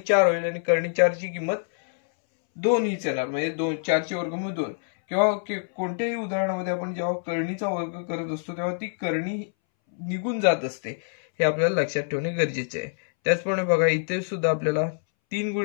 4 होईल आणि कर्णी 4 ची किंमत 2 हीच येणार, म्हणजे 4 चे वर्गमूळ 2. किंवा कोणत्याही उदाहरणामध्ये आपण जेव्हा कर्णीचा वर्ग करत असतो तेव्हा ती कर्णी निघून जात असते, हे आपल्याला लक्षात ठेवणे गरजेचे आहे. त्याचप्रमाणे बघा इथे सुद्धा आपल्याला 3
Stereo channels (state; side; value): silent; right; 61 dB below the other